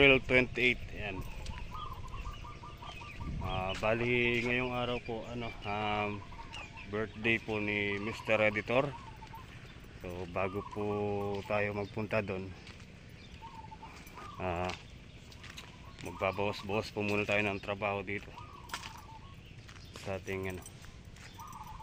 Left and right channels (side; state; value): both; identical; correlation 1.00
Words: 28. Ayan. Bali ngayong araw po birthday po ni Mr. Editor. So bago po tayo magpunta doon, magbabawas-bawas po muna tayo ng trabaho dito sa ating